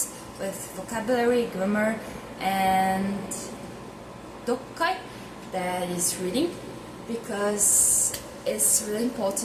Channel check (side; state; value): both; identical; correlation 1.00